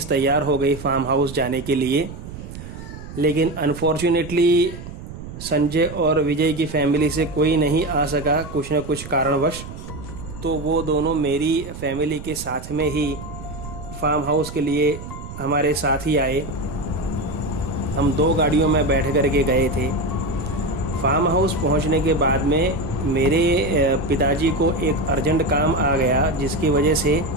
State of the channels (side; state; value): right; noise; rumble, 12 dB below the sound